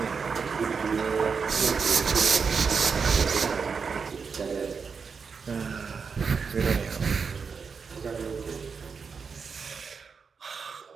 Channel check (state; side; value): quieter; left; 5.6 dB